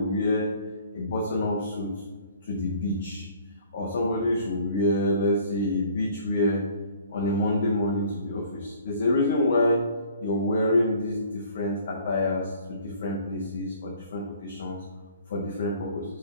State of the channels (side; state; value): both; inverted; correlation -0.54